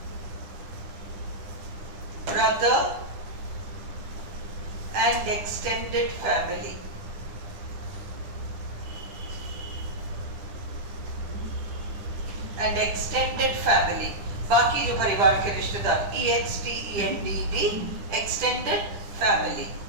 brother, and extended family। बाकी जो परिवार के रिश्तेदार, EXTENDD, extended family।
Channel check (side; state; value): left; late; 10 ms